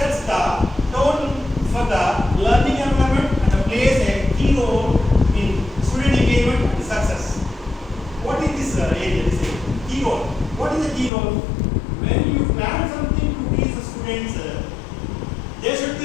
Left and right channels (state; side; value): drops out; right; at 11.1 s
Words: the tone for the learning environment and plays a key role in student engagement and success. What is this area? This is key role. What is the key role? When you plan something to teach the students, they should